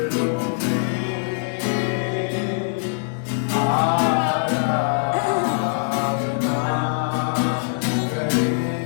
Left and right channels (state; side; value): silent; right; digital silence